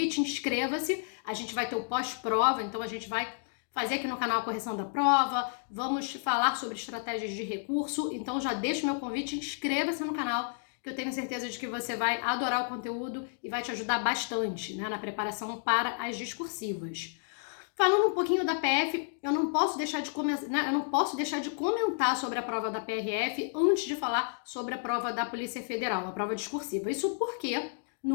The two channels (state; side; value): silent; right; digital silence